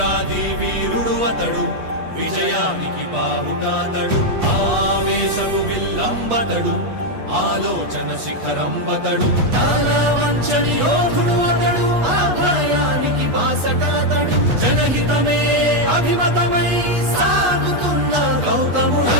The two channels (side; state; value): left; late; 8.2 ms